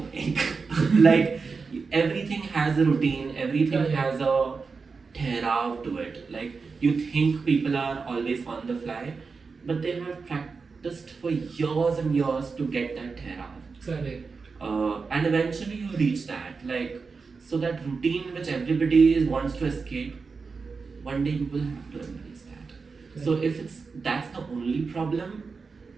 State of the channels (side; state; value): left; quieter; 4.7 dB